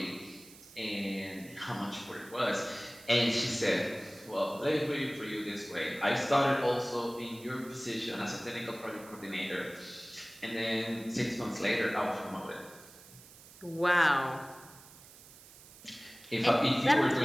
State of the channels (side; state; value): right; noise; hiss, 20 dB below the sound